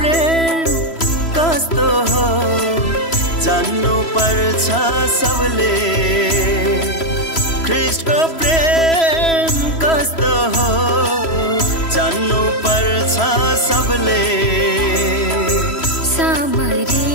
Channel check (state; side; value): late; right; 3.0 ms